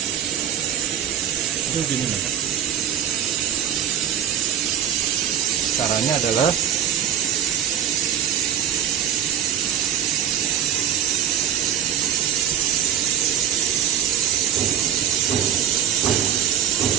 Itu gini loh. Caranya adalah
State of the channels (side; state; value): left; quieter; 9.6 dB